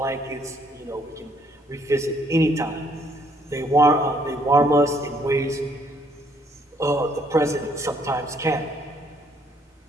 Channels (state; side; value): normal; both; correlation 0.67